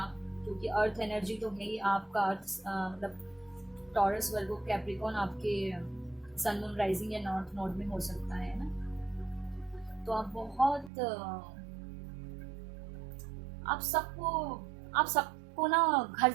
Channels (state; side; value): drops out; left; at 10.9 s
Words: क्योंकि अर्थ एनर्जी तो है ही आपका। अर्थ मतलब टॉरस, वर्गो, कैप्रिकॉन आपके सन, मून, राइजिंग या नॉर्थ नोड में हो सकता है ना। तो आप बहुत आप सबको ना घर